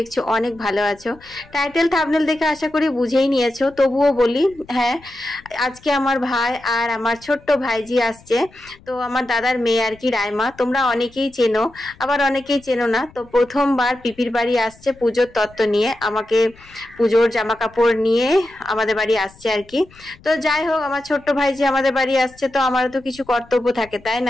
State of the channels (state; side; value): noise; left; rumble, 25 dB below the sound